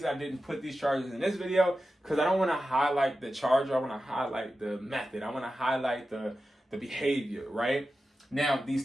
I didn't put these chargers in this video, because I don't want to highlight the charger. I want to highlight the method. I want to highlight the behavior, right? Now, these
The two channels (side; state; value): both; normal; correlation 0.92